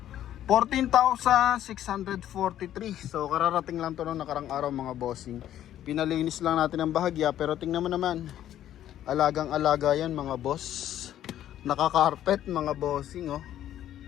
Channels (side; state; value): right; quieter; 11.7 dB